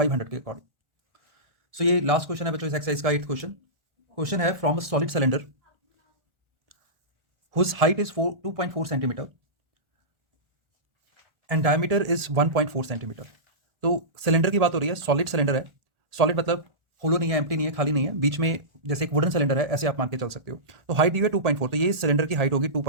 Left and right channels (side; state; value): left; late; 1.4 ms